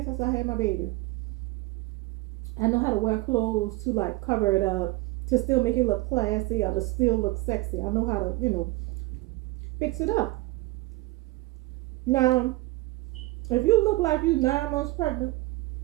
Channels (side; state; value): left; quieter; 20.7 dB